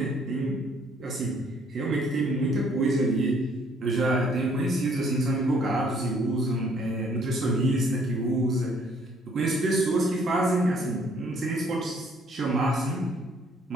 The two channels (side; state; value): both; normal; correlation 0.63